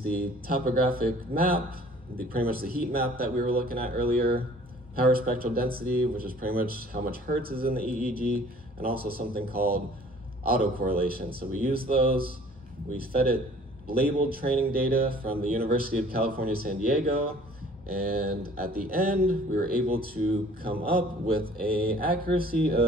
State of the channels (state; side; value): normal; both; correlation 0.52